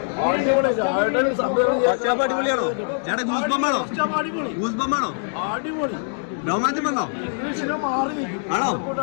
അടിപൊളി രാജുവേട്ടൻ സംവിധാനം അടിപൊളി രോമാഞ്ചം വന്നോ? ഇംഗ്ലീഷ് സിനിമ മാറി നിൽക്കും.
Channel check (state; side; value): silent; right; digital silence